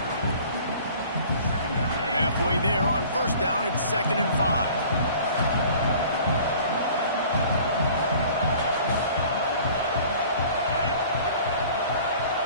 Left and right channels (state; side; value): inverted; both; correlation -0.49